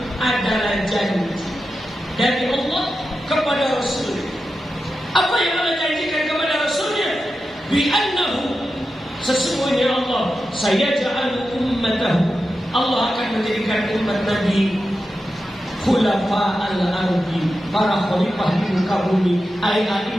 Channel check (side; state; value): both; normal; correlation 0.91